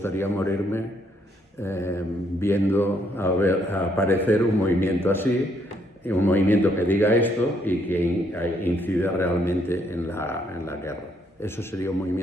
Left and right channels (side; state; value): both; normal; correlation 0.71